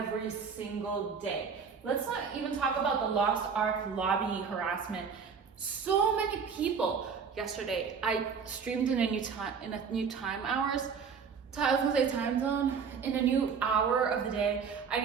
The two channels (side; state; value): left; quieter; 6.1 dB